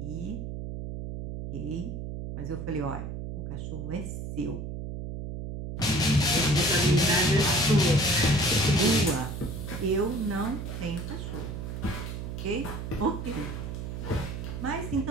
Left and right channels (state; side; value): noise; right; hum, 6 dB below the sound